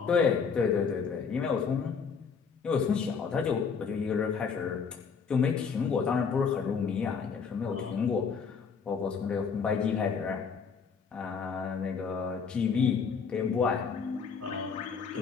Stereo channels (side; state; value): right; quieter; 5.9 dB